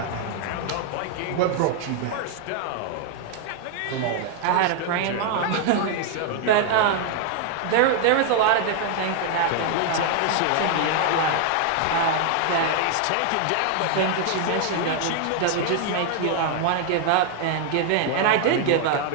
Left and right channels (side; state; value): both; different; correlation 0.00